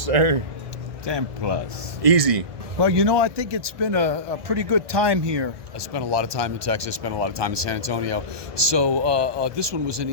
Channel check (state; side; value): late; left; 1.2 ms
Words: 10 plus. Easy. Well, you know, I think it's been a pretty good time here. I spent a lot of time in Texas, spent a lot of time in San Antonio. So this one was an